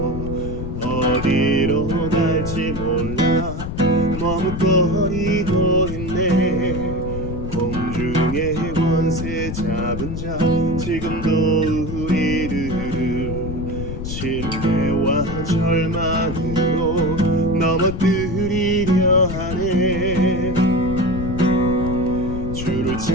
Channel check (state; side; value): noise; left; rumble, 6 dB below the sound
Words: 어디로 갈지 몰라 머뭇거리고 있네. 공중의 권세 잡은 자 지금도 우리들을 실패와 절망으로 넘어뜨리려 하네. 주를